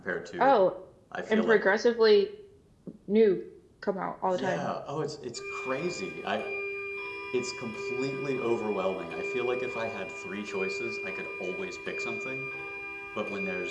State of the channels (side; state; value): both; identical; correlation 1.00